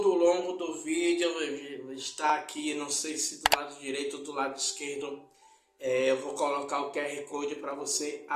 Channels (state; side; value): identical; both; correlation 1.00